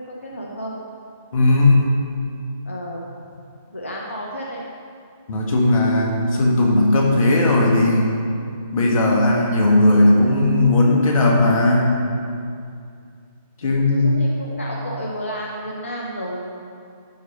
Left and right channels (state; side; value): inverted; both; correlation -0.77